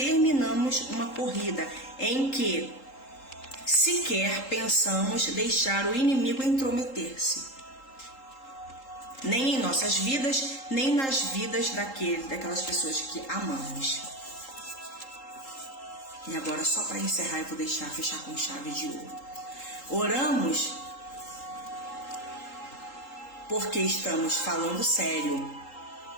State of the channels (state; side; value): late; right; 3.8 ms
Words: uma corrida em que sequer pensamos deixar o inimigo intrometer-se. Nem em nossas vidas, nem nas vidas daquelas pessoas que amamos. E agora, só para encerrar, eu vou fechar com chave de ouro. Oramos porque estamos falando sério